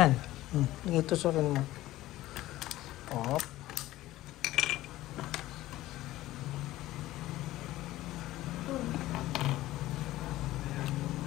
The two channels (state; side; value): quieter; right; 16.1 dB